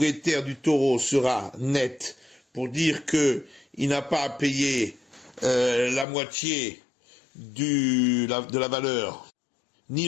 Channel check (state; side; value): drops out; right; at 6.1 s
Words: du taureau sera net pour dire que il n'a pas à payer la moitié de la valeur, ni